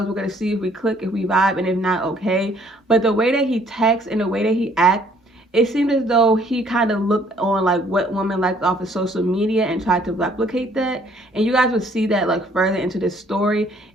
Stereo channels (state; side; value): normal; both; correlation 0.61